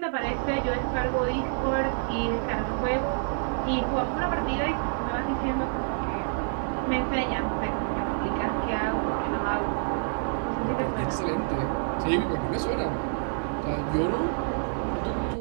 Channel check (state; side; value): silent; left; digital silence